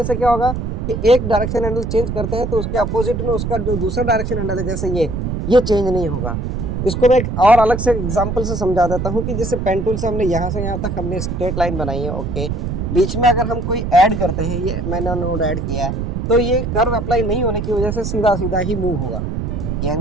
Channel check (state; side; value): noise; right; rumble, 3 dB below the sound